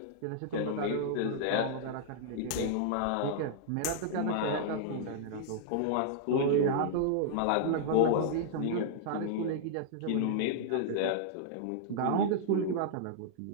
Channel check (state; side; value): different; both; correlation -0.01